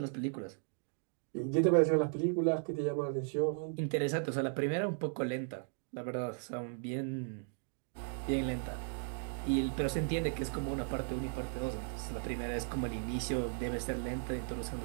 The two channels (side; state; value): left; silent; 54 dB below the other